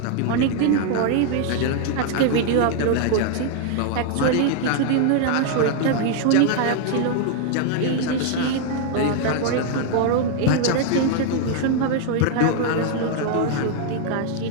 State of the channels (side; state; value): both; different; correlation 0.00